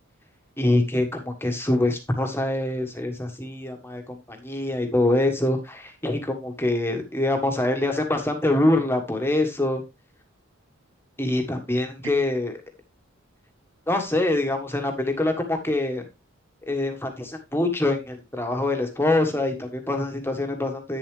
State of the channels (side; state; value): both; normal; correlation 0.76